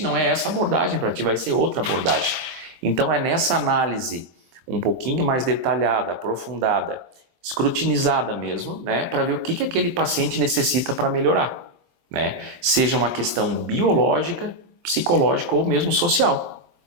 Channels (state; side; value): late; left; 23 ms